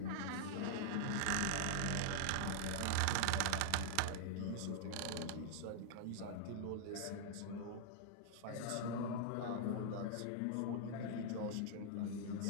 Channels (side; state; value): both; different; correlation -0.01